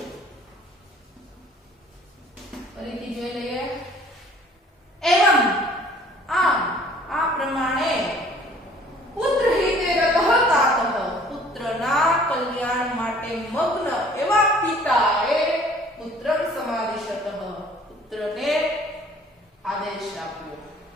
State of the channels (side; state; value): both; normal; correlation 0.54